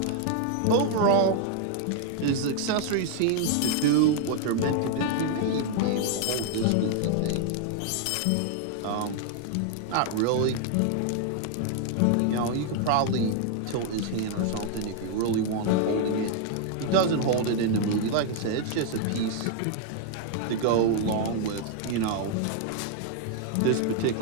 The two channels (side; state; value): both; different; correlation 0.00